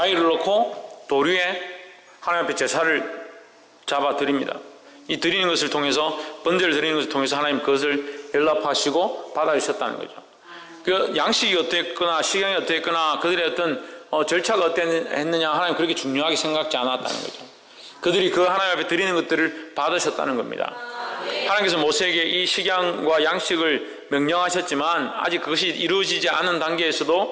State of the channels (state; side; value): identical; both; correlation 1.00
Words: 놓고 돌 위에 하나님 앞에 제사를 잡아 드립니다. 이 드리는 것을 통해서, 번제를 드리는 것을 통해서 하나님 그것을 연락하시고 받아주셨다는 거죠. 그 양식이 어땠거나 식양이 어땠거나 그들의 어떤 절차가 어땠느냐 하나님 그렇게 중요하게 생각지 않았다는 거죠. 그들이 그 하나님 앞에 드리는 것들을 받으셨다는 겁니다. 하나님께서 모세에게 이 식양과 양식을 명령하셨지만 아직 그것이 이루어지지 않은